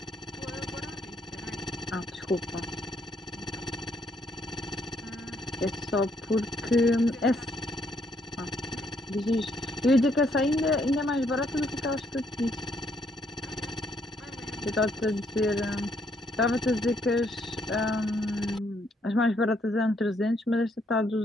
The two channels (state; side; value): normal; both; correlation 0.71